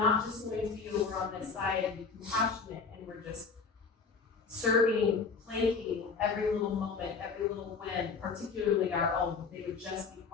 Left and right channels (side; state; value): right; quieter; 5.1 dB